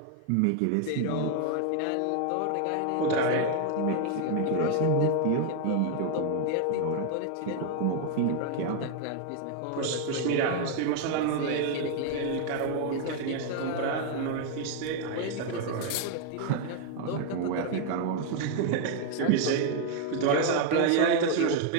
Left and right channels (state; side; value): different; both; correlation 0.00